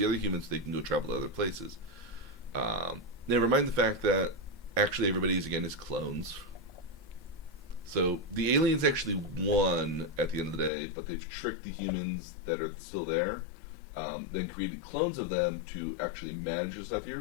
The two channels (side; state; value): right; drops out; at 10.7 s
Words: other humans so they can go travel to other places. Never mind the fact that actually everybody is clones. So the aliens actually won at the end of the day, but they've tricked the humans that are still there, then created clones of them to actually manage the stuff